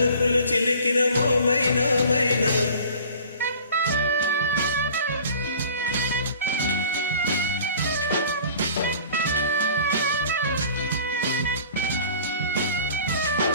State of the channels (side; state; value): both; inverted; correlation -0.46